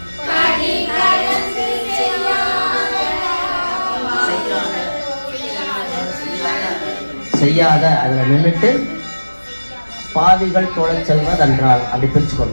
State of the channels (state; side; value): inverted; both; correlation -1.00